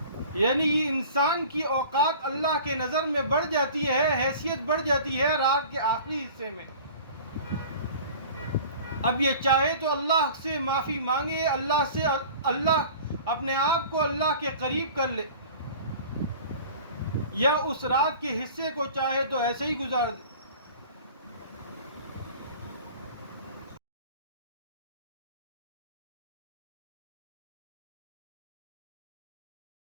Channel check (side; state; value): both; inverted; correlation -0.43